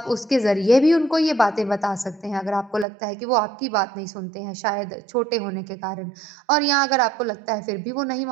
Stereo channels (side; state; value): left; drops out; at 2.9 s